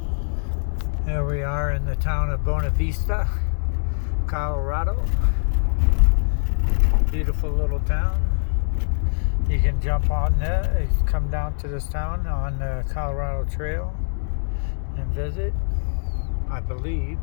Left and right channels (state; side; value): silent; right; digital silence